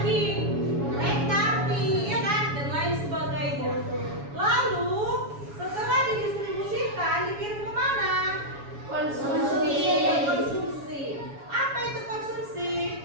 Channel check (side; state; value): left; late; 7.2 ms